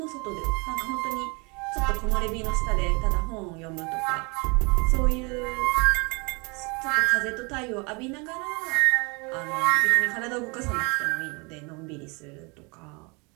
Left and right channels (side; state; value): left; quieter; 30.2 dB